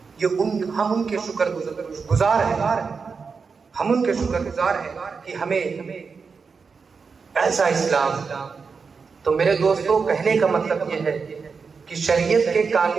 یہ ہم ان کے شکر گزار ہیں، ہم ان کے شکر گزار ہیں کہ ہمیں ایسا اسلام. تو میرے دوستوں کہنے کا مطلب یہ ہے کہ شریعت کے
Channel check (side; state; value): left; quieter; 5.2 dB